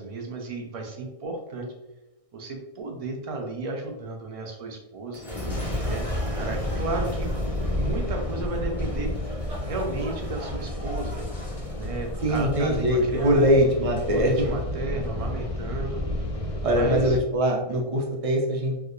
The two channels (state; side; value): late; left; 1.6 ms